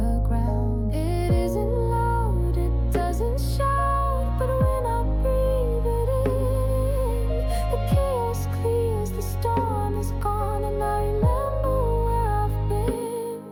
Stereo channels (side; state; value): both; identical; correlation 1.00